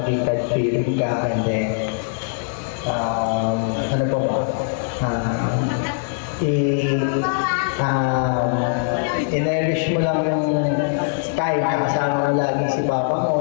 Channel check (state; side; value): silent; right; 65 dB below the other